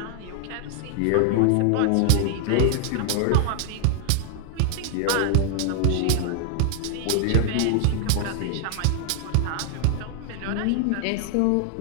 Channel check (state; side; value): different; both; correlation 0.00